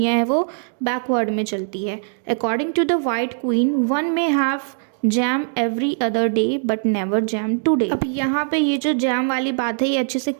है वो बैकवर्ड में चलती है। According to the white queen one may have jam every other day but never jam today. अब यहाँ पे ये जो जैम वाली बात है ये अच्छे से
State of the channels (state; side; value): silent; left; digital silence